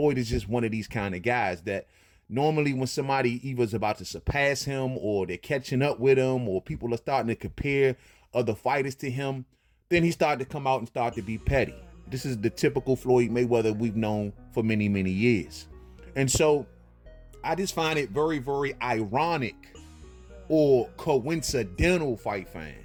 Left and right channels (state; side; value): identical; both; correlation 1.00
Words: is just one of these kind of guys that normally when somebody either is about to surpass him, or they're catching up with him, or people are starting to compare other fighters to him, then he started to come out and start to be petty. This is the typical Floyd Mayweather we've known for many, many years. And so I just find it very, very ironic or coincidental, fight